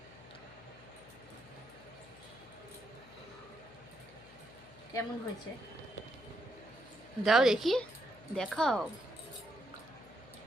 কেমন হয়েছে দাও দেখি, দেখাও।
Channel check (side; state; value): left; noise; hum, 20 dB below the sound